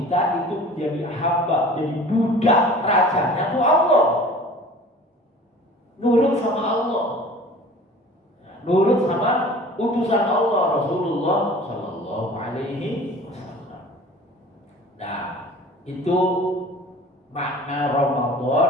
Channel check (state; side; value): normal; both; correlation 0.44